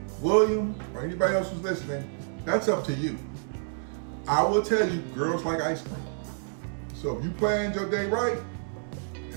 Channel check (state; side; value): silent; left; 58 dB below the other